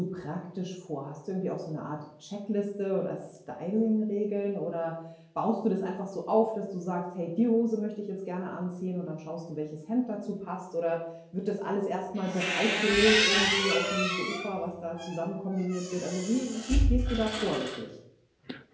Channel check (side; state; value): both; identical; correlation 1.00